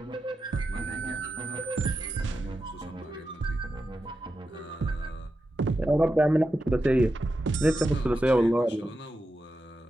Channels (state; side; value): normal; both; correlation 0.89